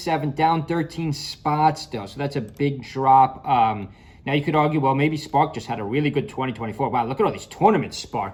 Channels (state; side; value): identical; both; correlation 1.00